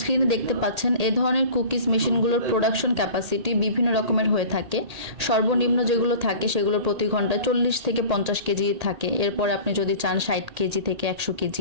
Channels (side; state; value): left; late; 1.8 ms